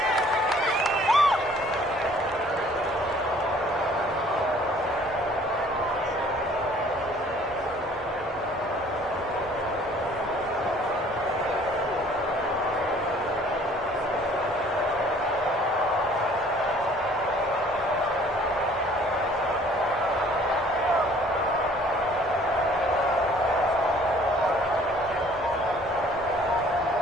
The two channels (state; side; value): normal; both; correlation 0.55